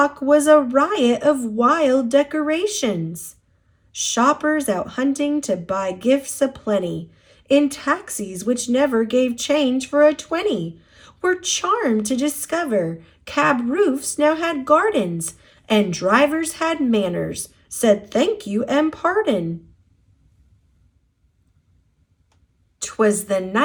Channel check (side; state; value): both; identical; correlation 1.00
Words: was a riot of wild decorations. Shoppers out hunting to buy gifts aplenty, in taxis which never gave change for a 20, were charmed to discover cab roofs now had gardens, and drivers had manners, said thank you and pardon. 'Twas the